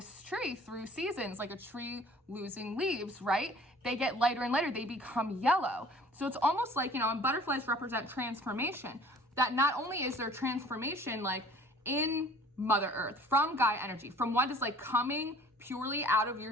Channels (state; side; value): normal; both; correlation 0.50